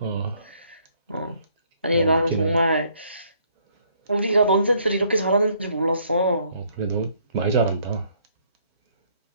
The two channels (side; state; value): both; inverted; correlation -0.66